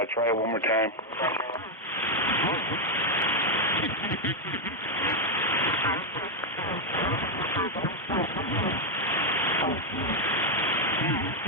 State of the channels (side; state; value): both; normal; correlation 0.00